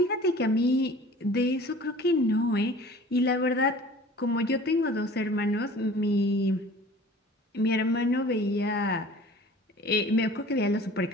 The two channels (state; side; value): normal; both; correlation 0.45